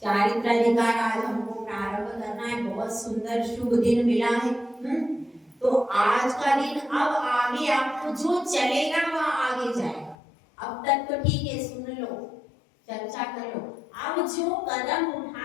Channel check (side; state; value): right; drops out; at 10.2 s